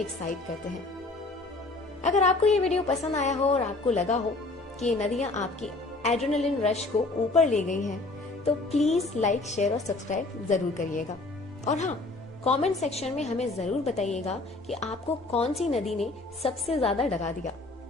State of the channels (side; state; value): right; quieter; 3.2 dB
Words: करते हैं। अगर आपको ये वीडियो पसंद आया हो और आपको लगा हो कि ये नदियां आपकी एड्रेनलिन रश को ऊपर ले गई हैं, तो प्लीज लाइक, शेयर और सब्सक्राइब जरूर करिएगा। और हाँ, कमेंट सेक्शन में हमें जरूर बताइएगा कि आपको कौन सी नदी ने सबसे ज्यादा डरा दिया,